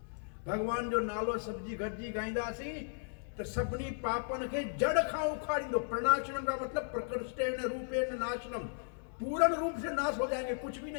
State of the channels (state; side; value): silent; right; digital silence